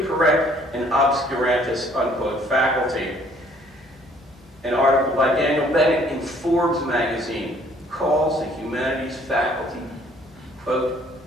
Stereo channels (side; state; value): both; normal; correlation 0.60